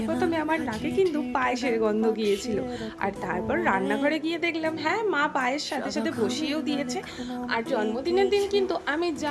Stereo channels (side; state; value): both; identical; correlation 1.00